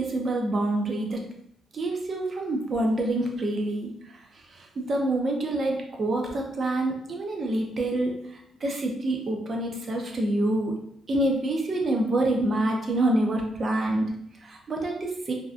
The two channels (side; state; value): both; normal; correlation 0.78